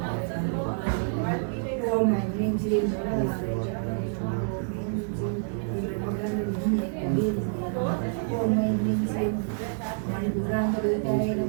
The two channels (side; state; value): left; silent; digital silence